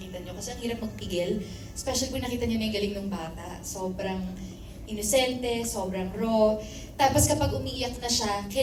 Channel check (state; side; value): identical; both; correlation 1.00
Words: nyo. Kasi ang hirap magpigil, especially kung nakita nyo na yung galing ng bata. Sobrang inosente, sobrang raw. Tapos kapag umiiyak na siya,